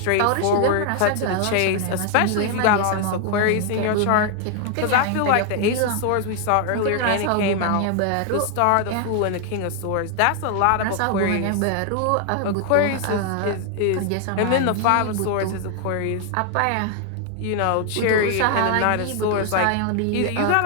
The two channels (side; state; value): both; different; correlation 0.00